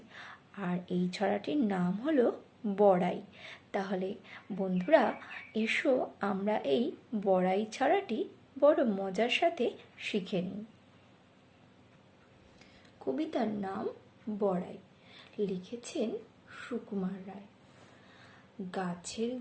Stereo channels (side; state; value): both; identical; correlation 1.00